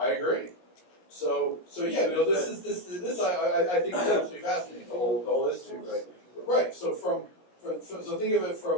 agree. So yeah, this I think is absolutely fascinating. The whole history, right? Right. So so think of it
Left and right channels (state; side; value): late; right; 17 ms